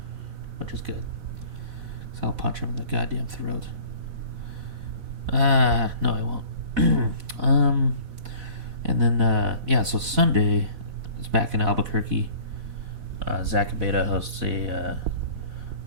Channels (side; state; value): left; late; 4.1 ms